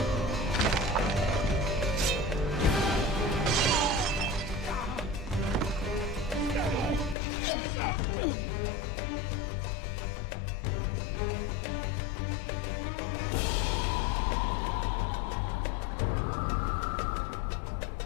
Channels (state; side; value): drops out; right; at 7.2 s